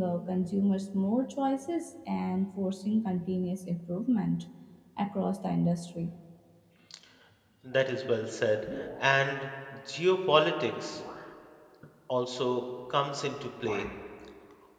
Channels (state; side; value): identical; both; correlation 1.00